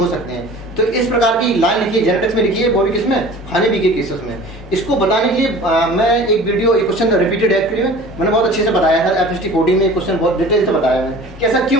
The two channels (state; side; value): normal; both; correlation 0.42